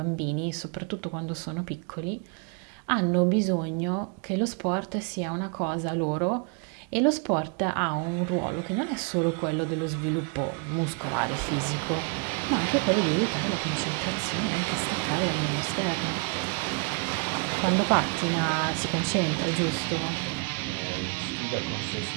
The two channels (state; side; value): quieter; left; 32.5 dB